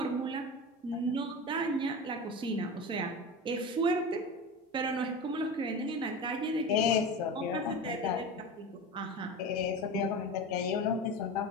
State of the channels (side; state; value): both; normal; correlation 0.28